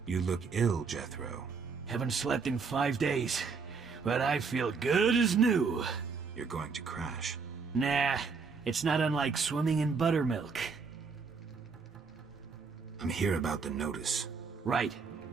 You look ill, Jethro. Haven't slept in 5 days, but I feel good as new. You're going to crash. Nah, it's not unlike swimming in buttermilk. I'm here about the notice. Right.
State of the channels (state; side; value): quieter; left; 5.1 dB